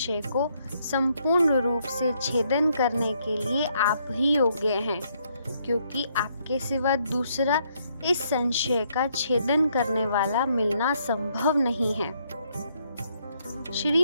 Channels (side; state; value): both; inverted; correlation -0.72